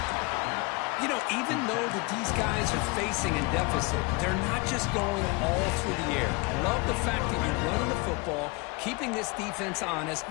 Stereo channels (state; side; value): quieter; right; 26.7 dB